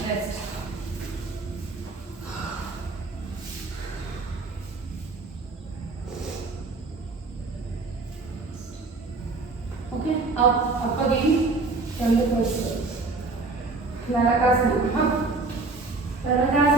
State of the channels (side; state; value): left; quieter; 3.6 dB